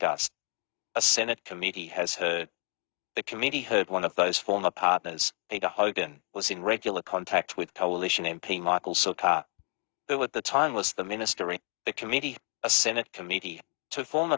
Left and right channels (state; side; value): quieter; right; 33.0 dB